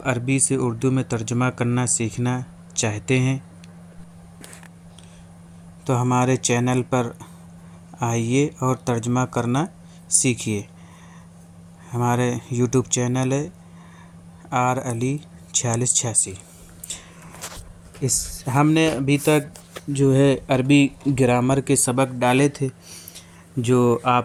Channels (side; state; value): both; identical; correlation 1.00